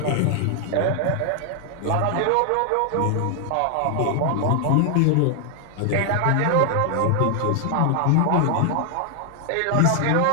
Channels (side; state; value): both; different; correlation 0.00